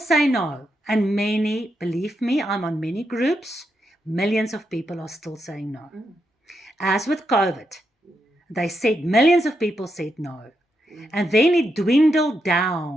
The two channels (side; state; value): both; normal; correlation 0.83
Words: no. And many, believe me, I'm on many groups, millions of people are still saying no. As with COVID, they said, millions of people said no. And then it dwindled